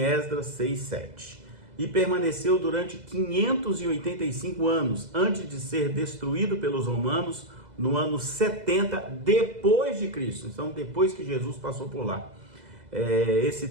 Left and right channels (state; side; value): late; left; 2.0 ms